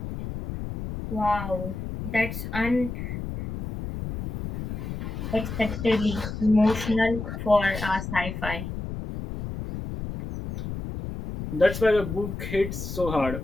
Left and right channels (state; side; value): noise; left; rumble, 6 dB below the sound